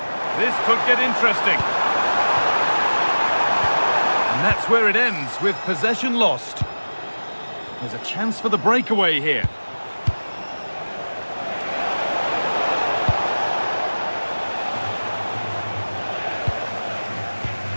This could get interesting. And that's where it ends, with possession lost. There's a chance for the breakaway here.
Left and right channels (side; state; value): both; inverted; correlation -1.00